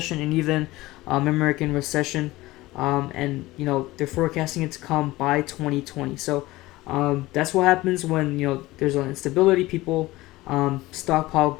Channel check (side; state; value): right; quieter; 18.8 dB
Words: and even American recession. And they're forecasting it to come by 2020. So that's what happens when there's an instability. People stockpile